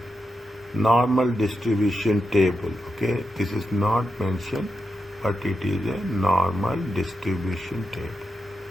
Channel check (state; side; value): normal; both; correlation 0.87